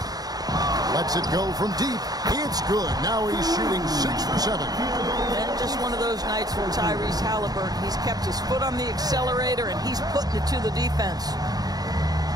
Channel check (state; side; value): late; left; 0.19 ms